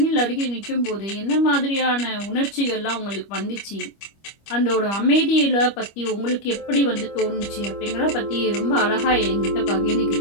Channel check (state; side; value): late; right; 25 ms